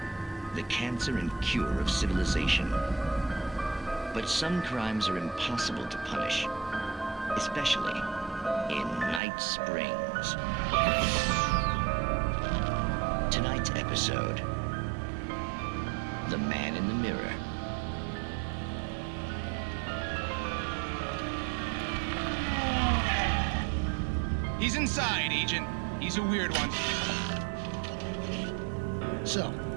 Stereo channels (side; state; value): left; drops out; at 9.2 s